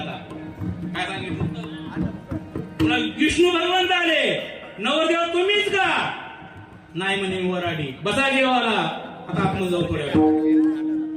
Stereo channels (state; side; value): identical; both; correlation 1.00